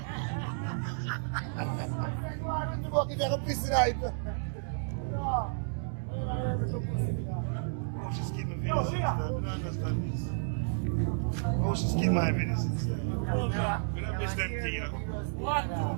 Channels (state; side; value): silent; left; digital silence